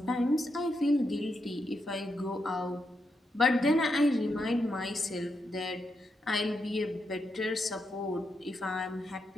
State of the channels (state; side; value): normal; both; correlation 0.83